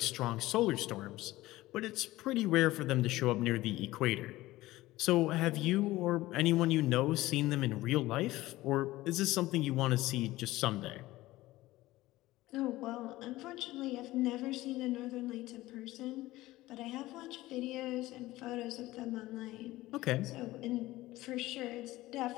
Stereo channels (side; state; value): right; quieter; 17.6 dB